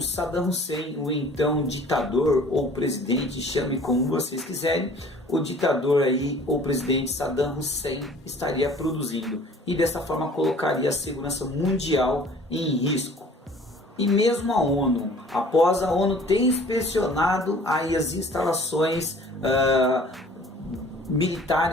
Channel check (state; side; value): normal; both; correlation 0.50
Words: Hussein, o então ditador ou presidente, chame como vocês quiserem, o ditador aí ou presidente Saddam Hussein estaria produzindo, e dessa forma colocaria a segurança mundial em risco. E mesmo a ONU, após a ONU ter inspecionado aí as instalações